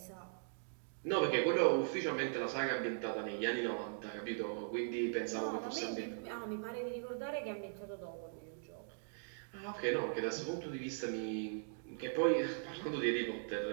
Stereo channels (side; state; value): left; silent; digital silence